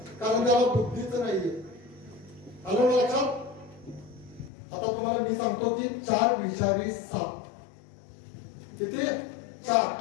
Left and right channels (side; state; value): right; drops out; at 4.5 s